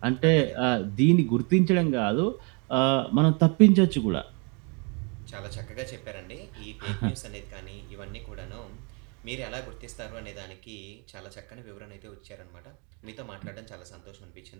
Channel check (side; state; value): left; quieter; 34.2 dB